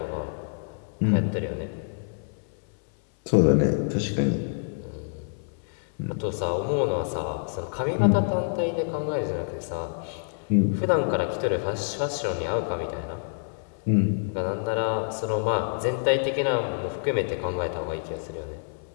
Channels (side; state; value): right; silent; 60 dB below the other